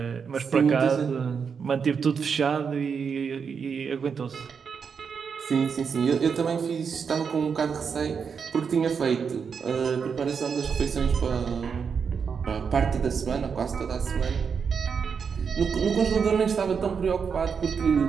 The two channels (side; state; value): left; quieter; 6.2 dB